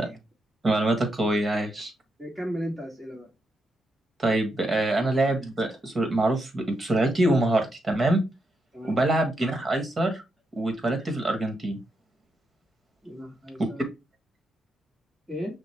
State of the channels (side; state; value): both; normal; correlation 0.83